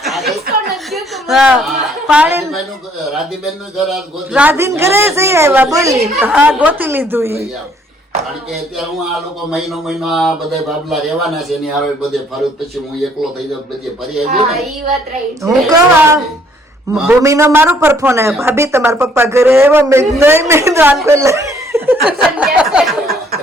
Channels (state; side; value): normal; both; correlation 0.63